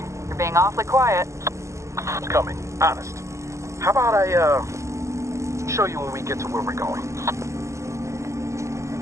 You're being awfully quiet. It's coming, honest. How about I, show you when we get to where we're going?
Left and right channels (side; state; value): left; late; 0.14 ms